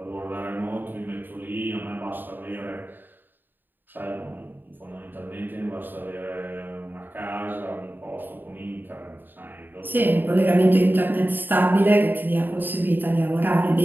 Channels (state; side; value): late; left; 0.092 ms